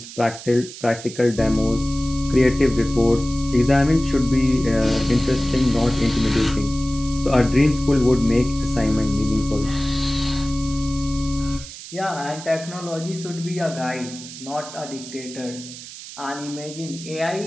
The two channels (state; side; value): noise; right; hiss, 14 dB below the sound